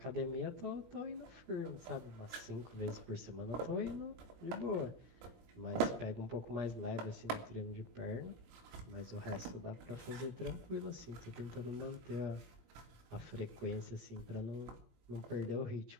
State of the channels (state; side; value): late; left; 17 ms